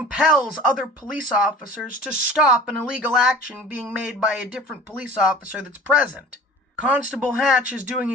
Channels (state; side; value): normal; both; correlation 0.42